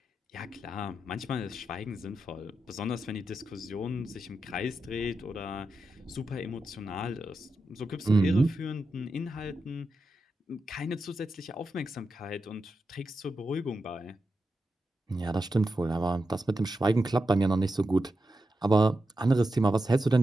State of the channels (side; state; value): both; normal; correlation 0.89